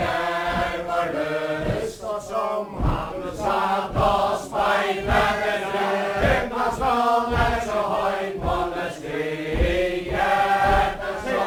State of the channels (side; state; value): both; identical; correlation 1.00